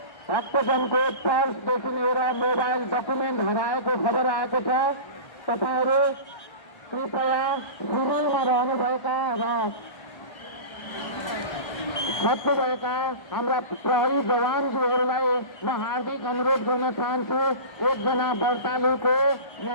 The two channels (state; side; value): late; right; 1.3 ms